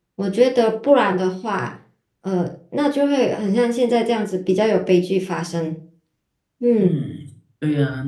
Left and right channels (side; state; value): both; identical; correlation 1.00